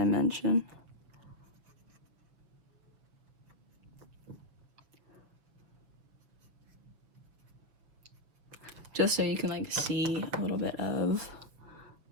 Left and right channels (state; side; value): late; left; 6.8 ms